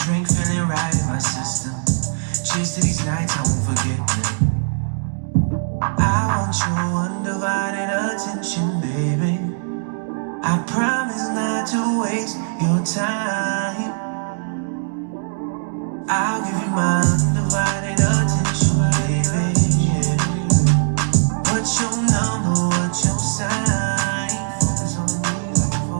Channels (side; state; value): left; silent; digital silence